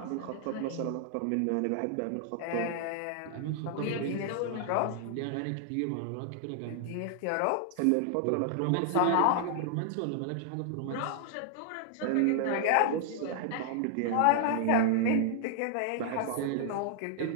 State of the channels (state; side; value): different; both; correlation -0.01